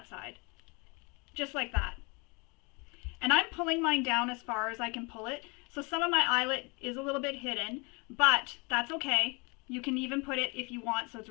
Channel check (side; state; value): right; quieter; 30.0 dB